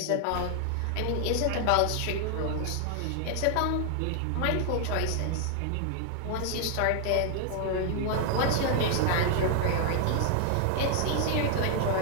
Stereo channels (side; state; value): both; different; correlation 0.00